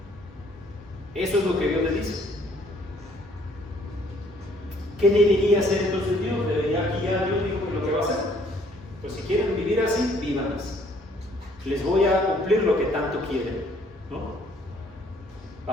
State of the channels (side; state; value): both; normal; correlation 0.62